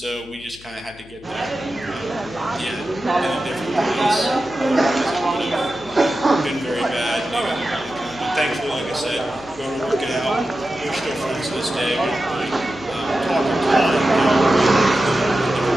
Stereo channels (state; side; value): noise; left; hum, 22 dB below the sound